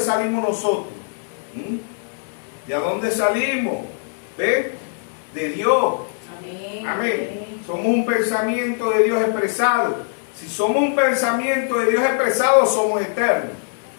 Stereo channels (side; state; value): right; silent; digital silence